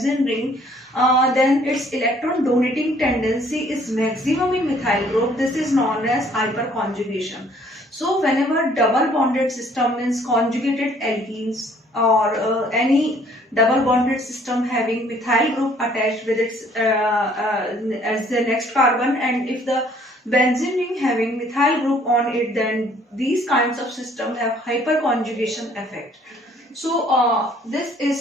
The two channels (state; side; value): normal; both; correlation 0.60